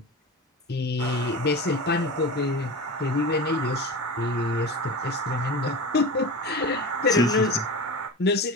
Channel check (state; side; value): normal; both; correlation 0.29